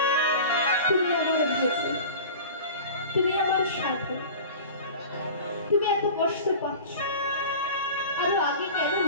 তুমি আমার ভোজন, তুমি আমার সাধন। তুমি এত কষ্ট পাচ্ছ, আরো আগে কেন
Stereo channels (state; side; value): inverted; both; correlation -0.37